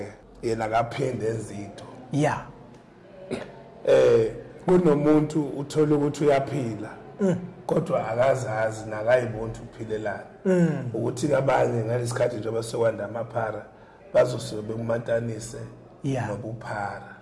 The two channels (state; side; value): identical; both; correlation 1.00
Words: yena kaphinde ezinto. Yeah. Kunomuntu uthola ukuthi uyaphila kodwa akazazi nakayibona ukuphilelana. Ukuthi kabanye ngalesikhathi nje basekwanda amaphara bazosuke bekumatanise nobuphara.